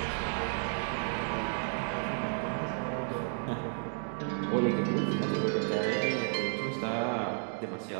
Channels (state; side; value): silent; left; 56 dB below the other